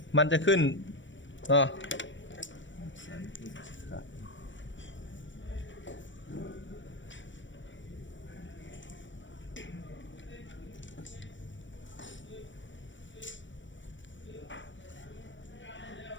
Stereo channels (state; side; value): late; right; 0.55 ms